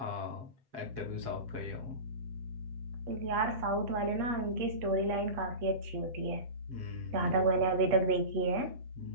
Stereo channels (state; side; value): late; left; 7.9 ms